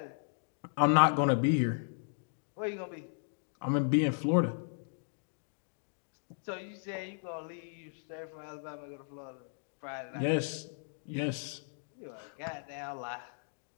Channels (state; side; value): silent; right; digital silence